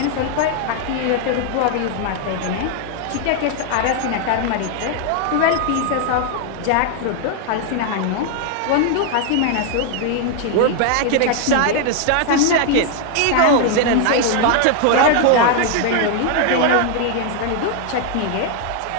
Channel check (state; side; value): different; both; correlation 0.00